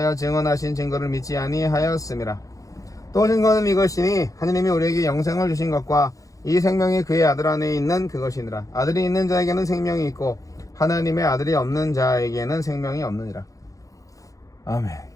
증언하신 증거를 믿지 아니하였음이라. 또 증거는 이것이니 하느님이 우리에게 영생을 주신 것과 이 생명이 그의 아들 안에 있는 그것이니라. 아들이 있는 자에게는 생명이 있고 하나님의 아들이 없는 자에게는 생명이 없느니라. 아멘.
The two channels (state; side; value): late; right; 0.16 ms